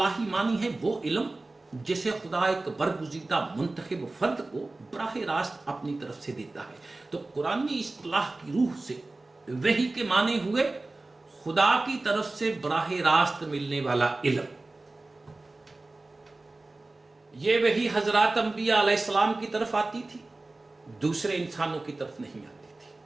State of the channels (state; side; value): quieter; left; 3.1 dB